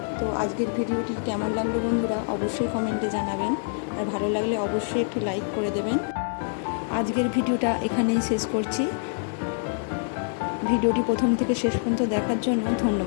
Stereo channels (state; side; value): silent; right; digital silence